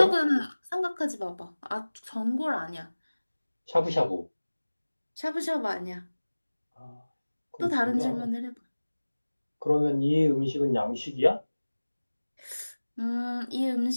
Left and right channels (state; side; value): inverted; both; correlation -1.00